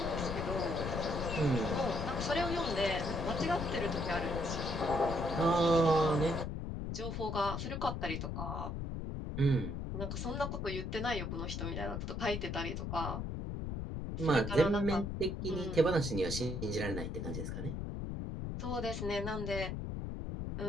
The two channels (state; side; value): noise; left; rumble, 4 dB below the sound